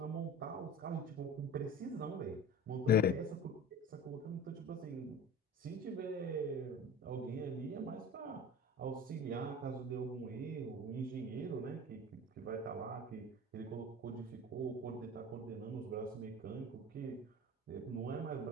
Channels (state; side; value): normal; both; correlation 0.37